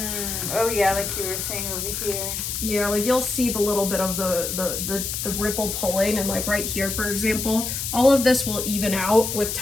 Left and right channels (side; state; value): left; noise; hiss, 3 dB below the sound